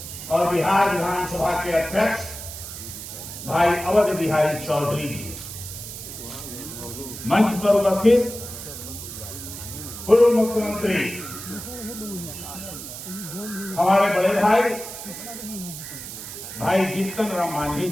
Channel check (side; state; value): right; noise; hiss, 10 dB below the sound